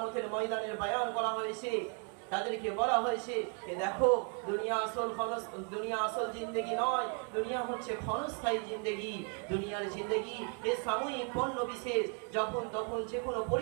ময়দানের বয়ান করা হয়েছে। তাদেরকে বলা হয়েছে যে দেখো, দুনিয়া আসল জিন্দেগি নয়, দুনিয়া হচ্ছে ক্ষণস্থায়ী জিন্দেগি। দুনিয়ার জিন্দেগি এ সাময়িক পণ্য বিশেষ, যখন তখন যে কোনো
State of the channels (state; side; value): quieter; left; 40.0 dB